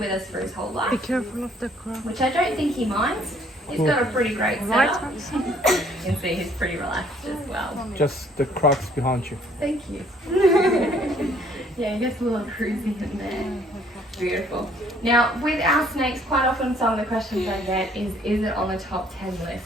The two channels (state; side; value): normal; both; correlation 0.62